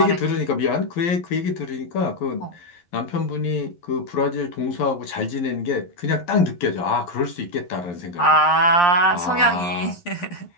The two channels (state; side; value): late; right; 11 ms